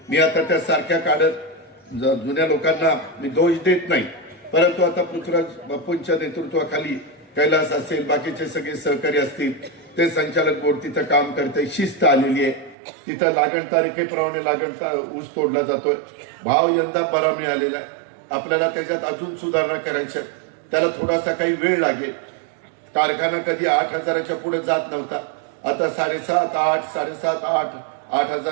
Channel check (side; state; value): left; drops out; at 12.8 s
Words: मी आता त्या सारख्या काढत जुन्या लोकांना मी दोष देत नाही, परंतु आता पृथ्वीराज बापूंच्या नेतृत्वाखाली कैलास असेल, बाकीचे सगळे सहकारी असतील, ते संचालक बोर्ड तिथं काम करते, शिस्त आलेली आहे. तिथं लागण तारखेप्रमाणे ऊस तोडला जातोय. भाव यंदा बरा मिळालेला आहे. आपल्याला त्याच्यात अजून सुधारणा करायच्या, त्याला थोडासा काही वेळ लागेल. कारखाना कधी 8,000च्या पुढे जात नव्हता, आता 7,500, 8, 7,500,